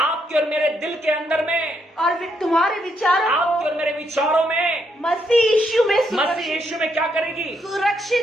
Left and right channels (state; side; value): normal; both; correlation 0.76